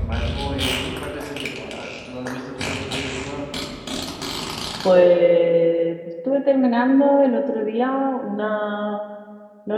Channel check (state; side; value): identical; both; correlation 1.00